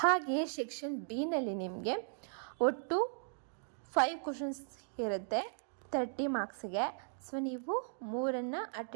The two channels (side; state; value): left; silent; digital silence